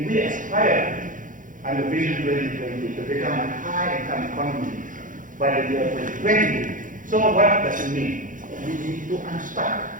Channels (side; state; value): left; late; 0.38 ms